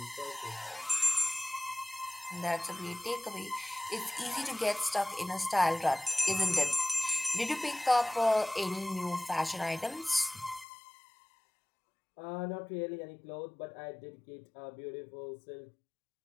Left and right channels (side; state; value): right; drops out; at 10.7 s